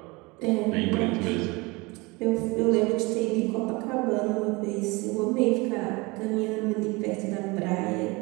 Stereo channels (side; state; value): left; quieter; 25.1 dB